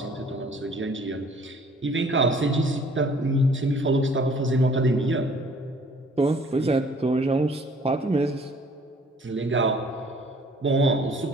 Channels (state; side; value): normal; both; correlation 0.56